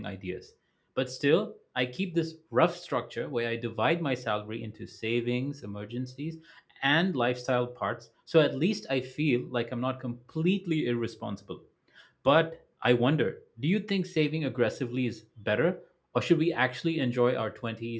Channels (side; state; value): both; identical; correlation 1.00